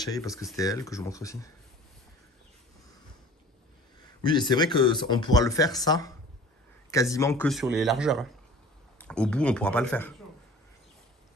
Parce que c'était elle que je vous montre aussi. Oui, et c'est vrai qu'on pourra le faire, ça, quasiment que sur les largeurs. Hein. Au bout, on pourra pas le faire.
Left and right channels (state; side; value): normal; both; correlation 0.45